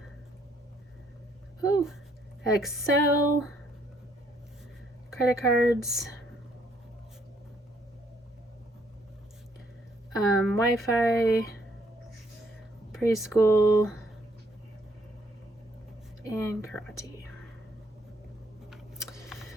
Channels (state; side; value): normal; both; correlation 0.68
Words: Oh, Excel, credit cards, Wi-Fi, preschool, and karate.